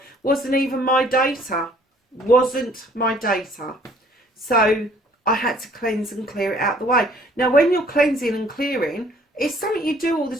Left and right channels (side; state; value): both; normal; correlation 0.58